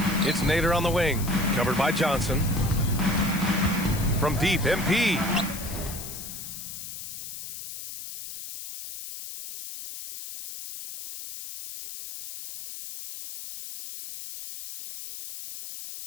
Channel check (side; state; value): left; noise; hiss, 10 dB below the sound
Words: It's Nader on the wing, covered by Johnson. From deep, MP.